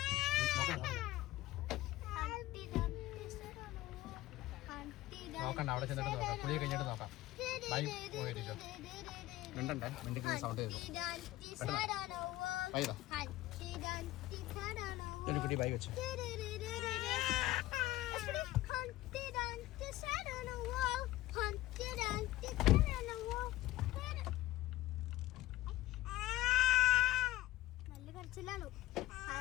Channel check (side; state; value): right; quieter; 16.7 dB